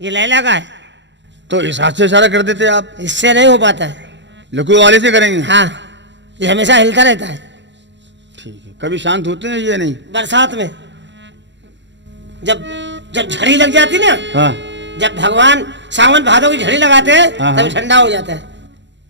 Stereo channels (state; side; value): late; left; 0.52 ms